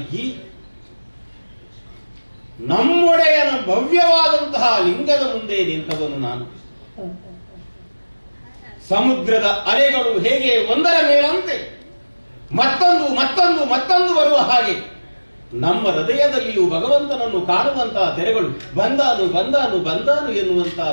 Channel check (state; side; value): inverted; both; correlation -1.00